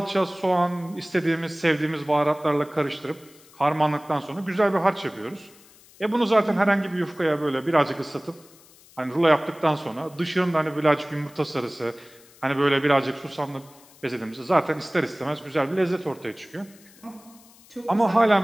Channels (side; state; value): left; noise; hiss, 25 dB below the sound